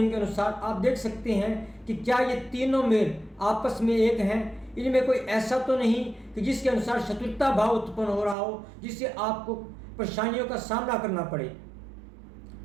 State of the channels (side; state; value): left; drops out; at 8.3 s